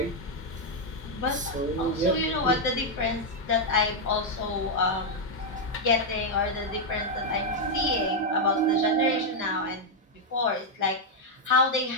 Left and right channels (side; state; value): both; normal; correlation 0.00